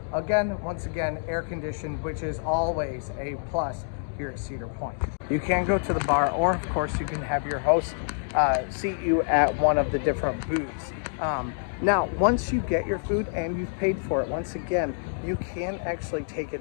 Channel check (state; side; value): silent; right; digital silence